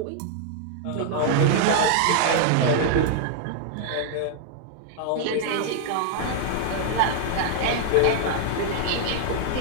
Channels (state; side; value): different; both; correlation 0.00